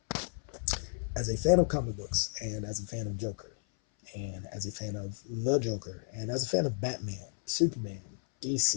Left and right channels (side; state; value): right; silent; 56 dB below the other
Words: as a fan of comic books, and as a fan of Joker, and as a fan of the Joker, and as a fan of Batman, Superman,